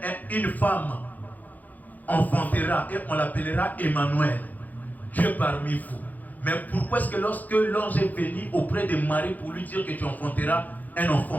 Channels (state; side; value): late; right; 0.082 ms